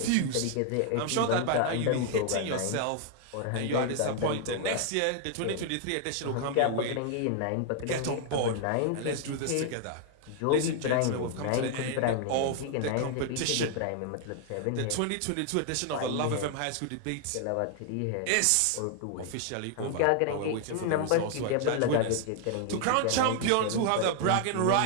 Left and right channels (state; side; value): different; both; correlation 0.00